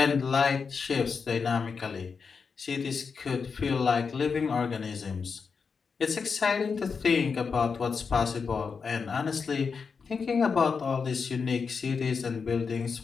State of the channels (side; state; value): right; quieter; 5.5 dB